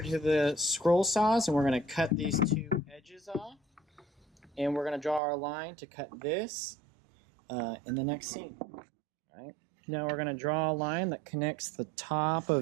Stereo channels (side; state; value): left; drops out; at 5.2 s